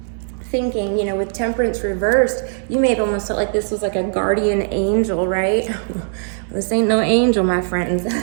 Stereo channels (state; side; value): silent; left; 66 dB below the other